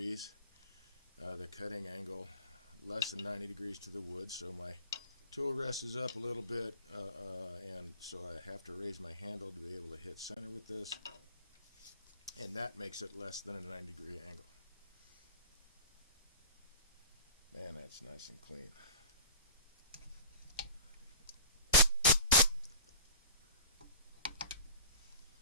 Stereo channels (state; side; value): inverted; both; correlation -0.40